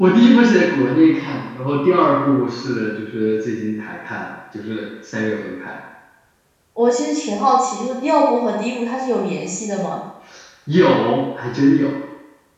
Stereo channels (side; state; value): both; identical; correlation 1.00